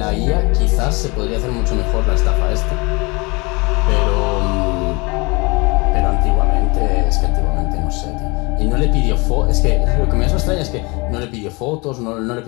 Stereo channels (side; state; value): right; quieter; 27.2 dB